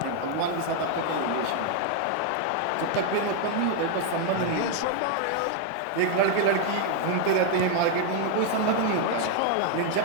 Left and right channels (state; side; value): different; both; correlation 0.00